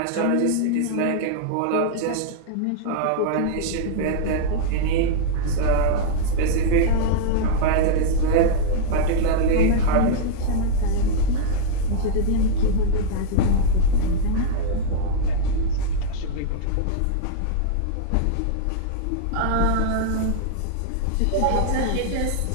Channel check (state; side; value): different; both; correlation -0.01